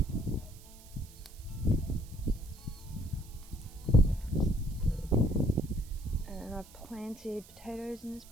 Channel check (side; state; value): right; noise; hiss, 22 dB below the sound